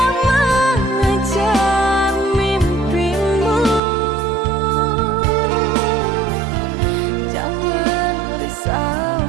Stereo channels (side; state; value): left; drops out; at 3.8 s